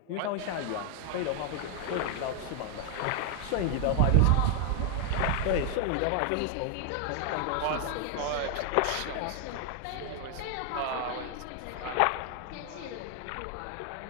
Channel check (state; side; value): different; both; correlation 0.00